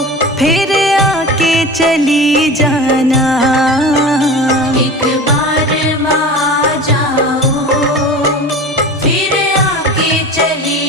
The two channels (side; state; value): both; normal; correlation 0.34